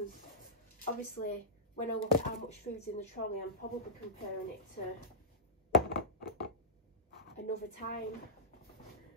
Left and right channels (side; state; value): both; normal; correlation -0.15